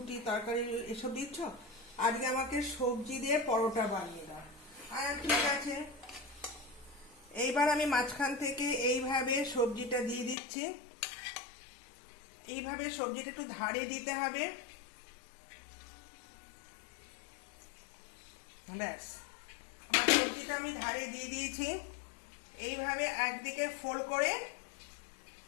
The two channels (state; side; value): drops out; right; at 10.4 s